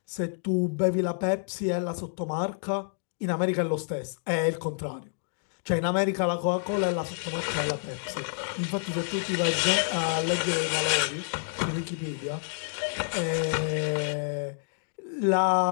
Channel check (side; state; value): right; silent; digital silence